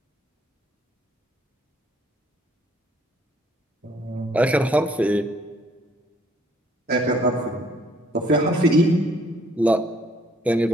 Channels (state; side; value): normal; both; correlation 0.63